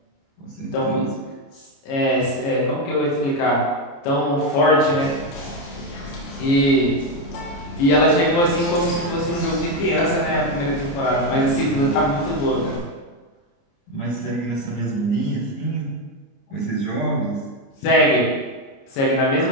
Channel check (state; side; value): late; right; 29 ms